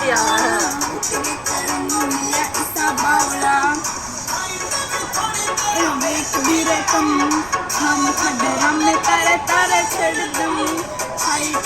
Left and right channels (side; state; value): right; noise; rumble, 20 dB below the sound